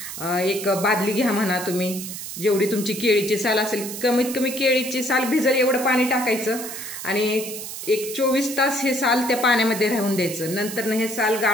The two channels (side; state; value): right; noise; hiss, 8 dB below the sound